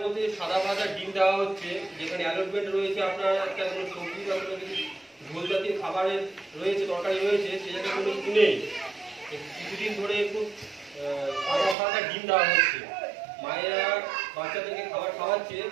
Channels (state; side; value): drops out; left; at 11.8 s